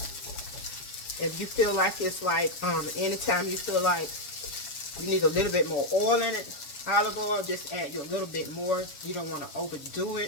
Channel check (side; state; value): right; late; 7.2 ms